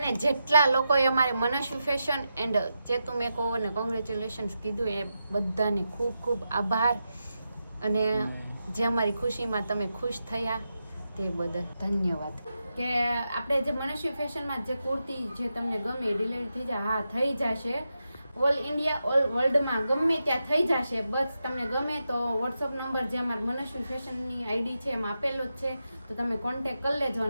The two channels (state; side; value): inverted; both; correlation -0.88